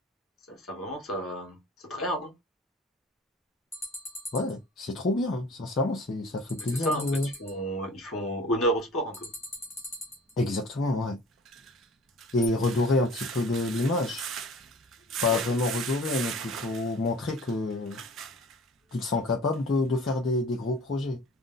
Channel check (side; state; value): both; normal; correlation 0.46